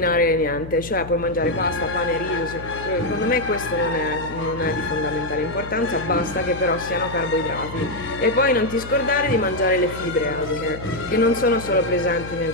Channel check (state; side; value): noise; left; hum, 12 dB below the sound